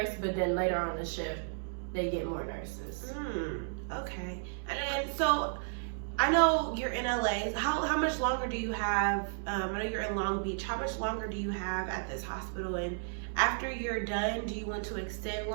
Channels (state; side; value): silent; left; digital silence